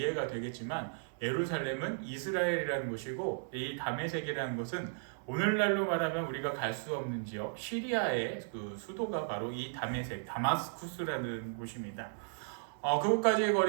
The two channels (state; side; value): silent; left; 54 dB below the other